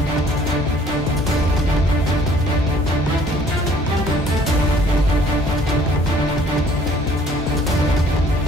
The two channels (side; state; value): both; normal; correlation 0.57